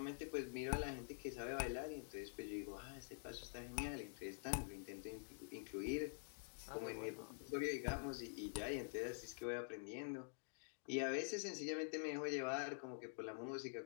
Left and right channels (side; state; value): right; silent; digital silence